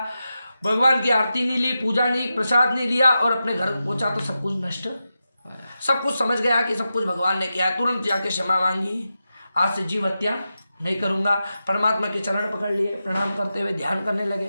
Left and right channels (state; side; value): inverted; both; correlation -0.90